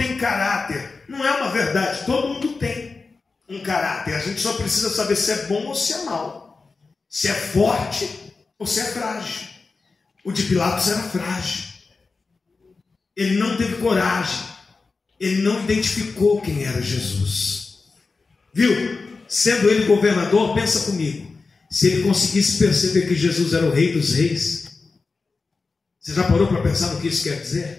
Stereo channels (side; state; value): right; quieter; 4.2 dB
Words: caráter. Não é uma verdade, todo mundo tem um caráter. A gente só precisa saber se é bom ou se é mau, se é forte ou se é frágil. O de Pilatos era frágil. ele não teve coragem, ele não identificou quem era Jesus. Viu? Sendo ele governador, pensa comigo, se ele conseguisse perceber que Jesus era o Rei dos Reis, você já parou para pensar no que isso quer